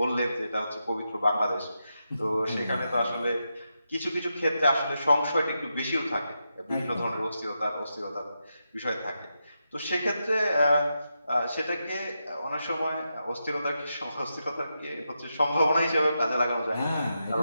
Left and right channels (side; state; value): both; inverted; correlation -0.86